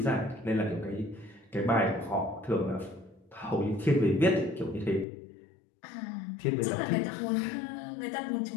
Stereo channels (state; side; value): drops out; right; at 5.1 s